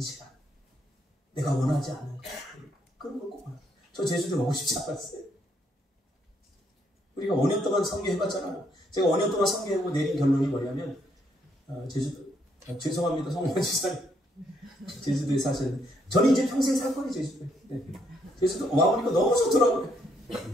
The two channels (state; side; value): normal; both; correlation 0.72